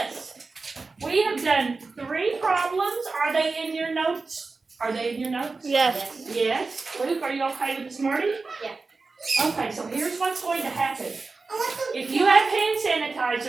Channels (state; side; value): quieter; left; 4.0 dB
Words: We have done 3 problems. Are they in your notes? Are they in your notes? Yes. Yes. Luke, are you okay with this morning? Yeah. Okay, so here's what's going to happen. If you have hand